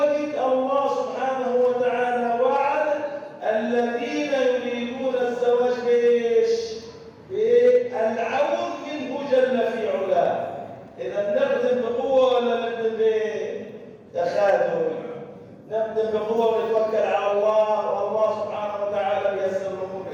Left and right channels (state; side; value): identical; both; correlation 1.00